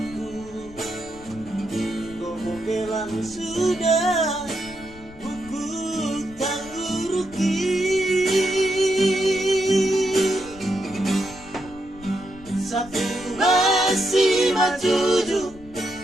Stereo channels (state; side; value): noise; left; rumble, 20 dB below the sound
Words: gomo bilang sudah buku tangguruki satu masih majuju